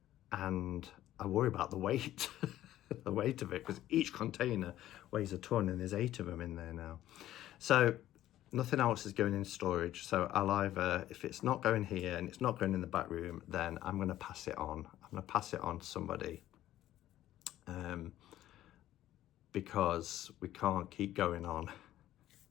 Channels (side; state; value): right; quieter; 13.5 dB